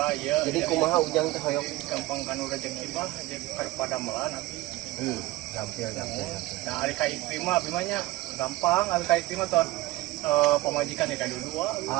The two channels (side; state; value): left; quieter; 18.4 dB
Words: ieu. Jadi kumaha ujang teh hoyong gampang kanu rezeki bah jadi padamelan abi. gampil. Nah, ari ka istri mah abi mah nya gampang, ari ka istri mah ton pemajikan ya ka dua.